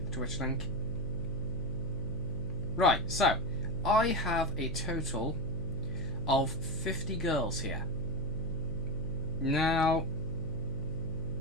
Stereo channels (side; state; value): left; noise; hum, 10 dB below the sound